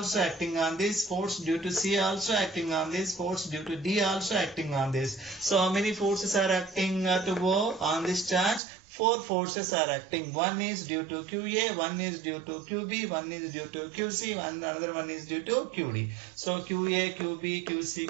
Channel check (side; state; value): left; drops out; at 8.6 s